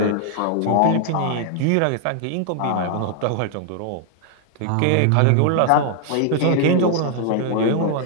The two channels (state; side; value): different; both; correlation 0.00